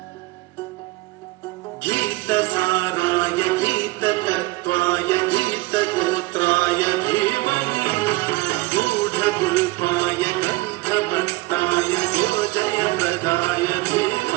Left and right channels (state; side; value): quieter; left; 20.9 dB